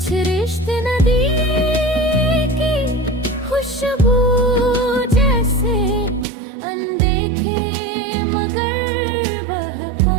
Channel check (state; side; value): drops out; left; at 6.2 s